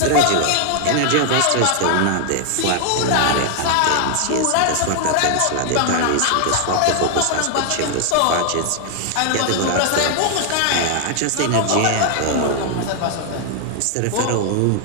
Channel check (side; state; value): both; different; correlation 0.00